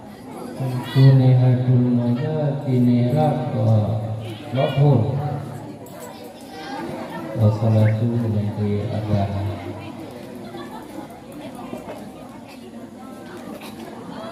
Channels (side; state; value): both; identical; correlation 1.00